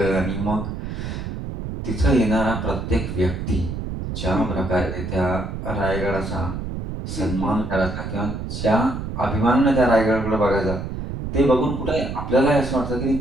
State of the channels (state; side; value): noise; right; rumble, 6 dB below the sound